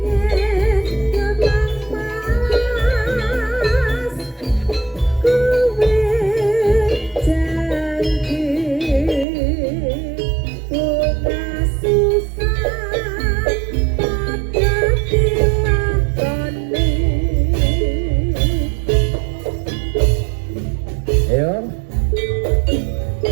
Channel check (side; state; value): left; drops out; at 9.2 s